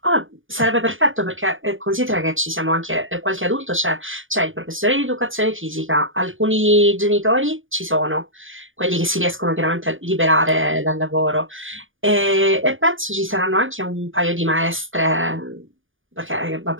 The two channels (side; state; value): left; late; 0.58 ms